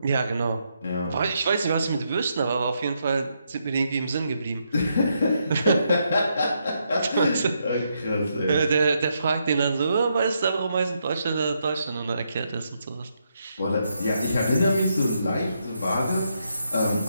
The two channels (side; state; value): both; inverted; correlation -0.79